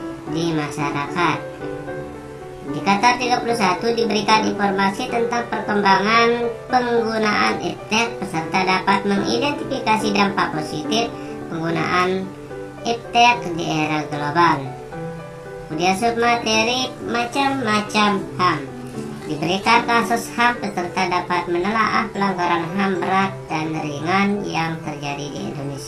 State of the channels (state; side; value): identical; both; correlation 1.00